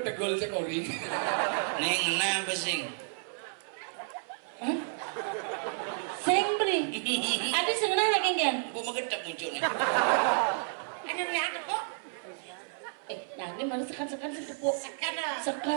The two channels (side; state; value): left; silent; 57 dB below the other